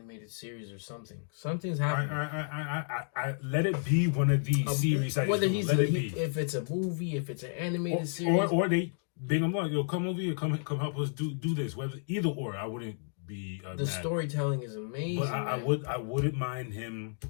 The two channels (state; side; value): silent; right; digital silence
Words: series or something. Something's happening. I let it be one of these series. Whether if it's a movie, if it's an animated series, or they bring him on. Yo, come over here, come help us do this. Whether either or, I wouldn't be. The storytelling is amazing. But I wouldn't mind him